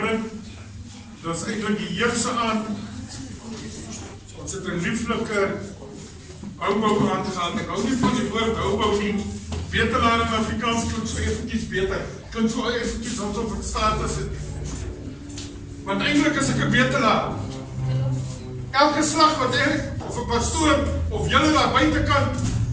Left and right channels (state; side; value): identical; both; correlation 1.00